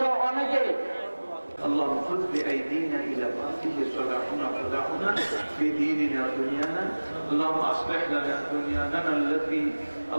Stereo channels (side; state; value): both; inverted; correlation -1.00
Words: অনেকে। اللهم خذ بأيدينا إلى ما فيه صلاحنا صلاحنا في ديننا ودنيانا. اللهم أصلح لنا دنيانا التي